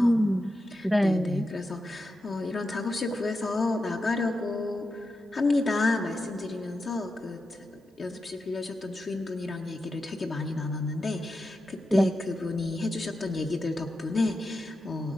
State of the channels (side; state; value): both; normal; correlation 0.89